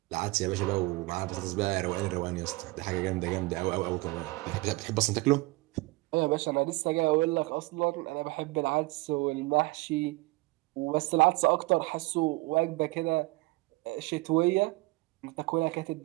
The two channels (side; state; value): left; quieter; 22.8 dB